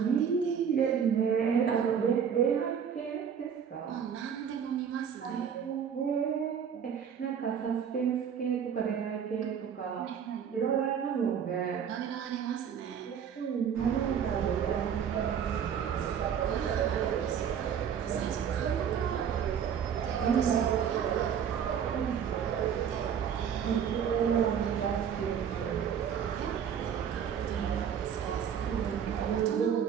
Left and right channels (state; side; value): quieter; left; 7.9 dB